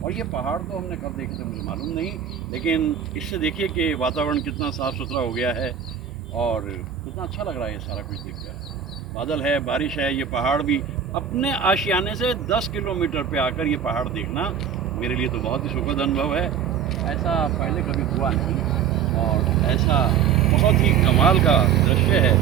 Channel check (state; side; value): quieter; left; 8.1 dB